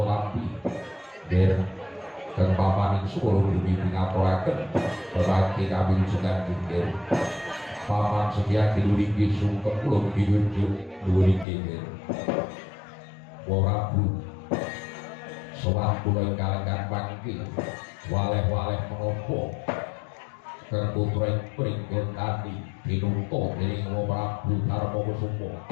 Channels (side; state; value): right; drops out; at 11.5 s